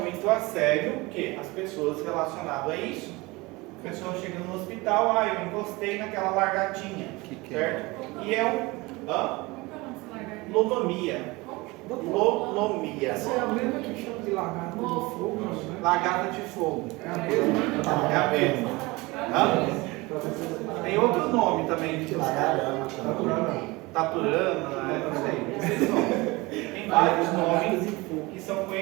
a sério o que? As pessoas relacionadas a isso. A pessoa chega no hospital, eu encostei naquela largatinha, certo? E é lonomia. Lonomia. Essa é a mesma que chama de lagarta de fogo, né? Lagarta de fogo. É a mesma? É a mesma. Tem outro nome também. Taturana, não sei. Tem vários nomes que são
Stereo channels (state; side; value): quieter; left; 23.0 dB